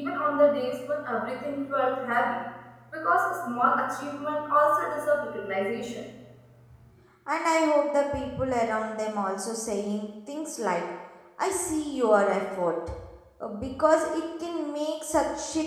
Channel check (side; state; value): both; identical; correlation 1.00